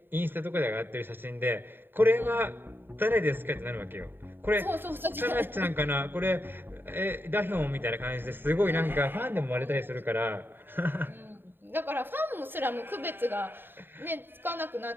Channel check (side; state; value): left; late; 0.098 ms